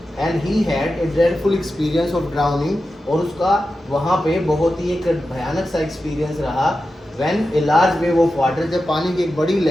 and he had a dreadful experience of drowning, और उसका वहाँ पे बहुत ही एक भयानक सा एक्सपीरियंस रहा। when a large wave of water, जब पानी की एक बड़ी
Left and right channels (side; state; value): both; normal; correlation 0.92